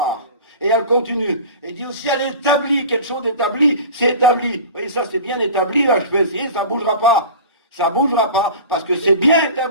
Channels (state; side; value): inverted; both; correlation -0.37